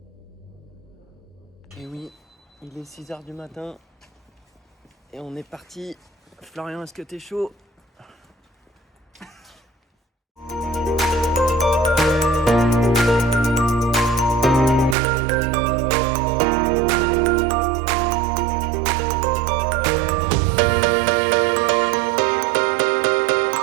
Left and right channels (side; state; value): left; drops out; at 15.0 s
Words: Et oui, il est 6h du matin et on est parti. Florian, est-ce que t'es chaud?